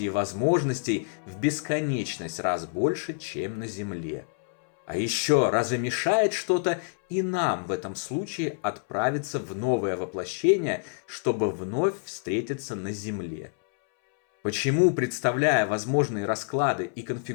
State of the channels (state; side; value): silent; right; 60 dB below the other